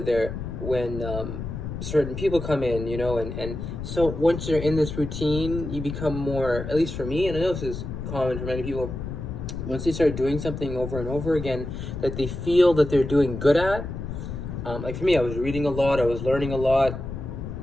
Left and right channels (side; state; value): left; noise; rumble, 7 dB below the sound